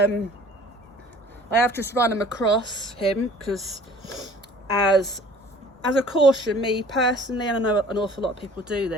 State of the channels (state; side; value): normal; both; correlation 0.50